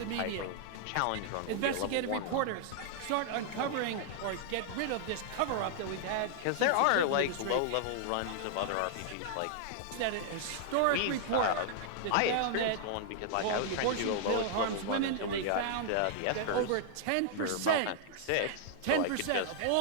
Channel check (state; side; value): different; both; correlation -0.01